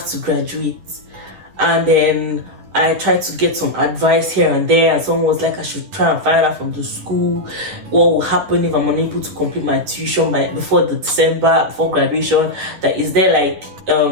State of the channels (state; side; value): late; left; 10 ms